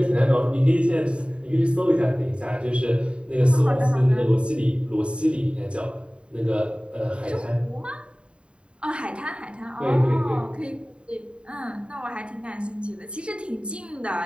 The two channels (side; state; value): left; late; 0.056 ms